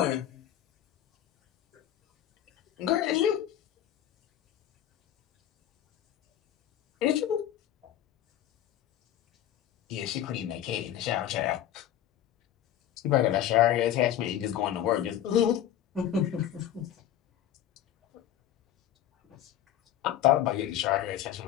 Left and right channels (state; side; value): quieter; right; 11.3 dB